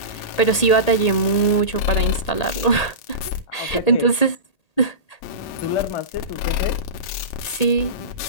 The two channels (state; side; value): late; right; 1.8 ms